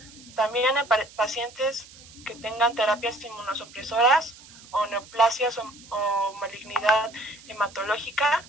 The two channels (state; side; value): noise; right; hiss, 21 dB below the sound